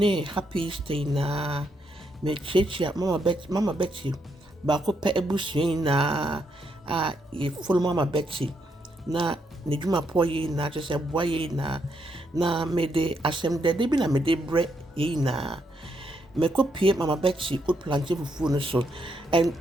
happy stay na me chechia Mama Betty, Bako pe ebusia na ye full Mama Betty na ne dwuma poye na just boye na me de asem de bi na me de bre yi na me kopie Mama Betty OAT PLANTAIN FUFU no so. And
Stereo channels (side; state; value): both; normal; correlation 0.78